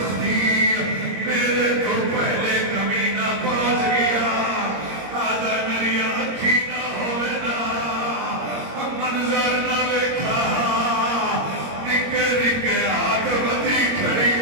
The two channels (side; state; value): left; late; 22 ms